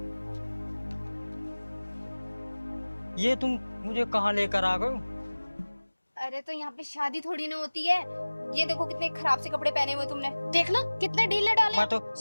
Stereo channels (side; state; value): both; inverted; correlation -1.00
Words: ये तुम मुझे कहाँ लेकर आ गए? अरे तो यहाँ पे शादी थोड़ी ना होती है। ये देखो कितने खराब से कपड़े पहने हुए तुमने। देखना कितने ढीले डाले। मैं तो